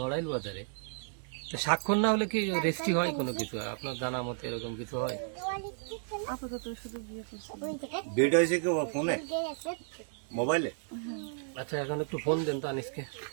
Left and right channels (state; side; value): silent; left; digital silence